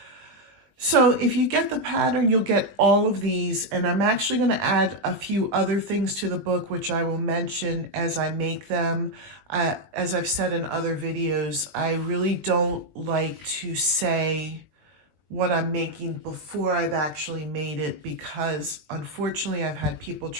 So if you get the pattern, you'll get all of these, and I'm actually going to add a few other things to the book, which I will mention as I make them. As I've said in other videos, I really don't like to say what I'm making before I've actually made it, because unfortunately I've had people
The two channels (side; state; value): left; late; 20 ms